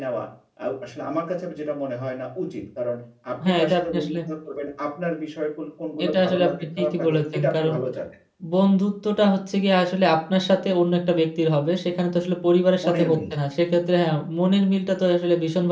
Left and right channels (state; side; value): identical; both; correlation 1.00